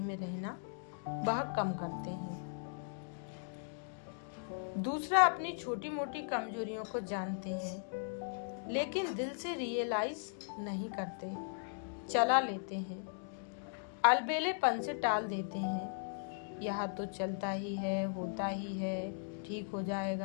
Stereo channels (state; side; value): silent; right; digital silence